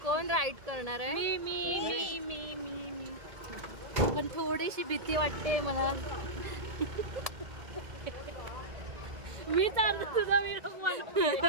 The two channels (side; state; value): left; late; 1.8 ms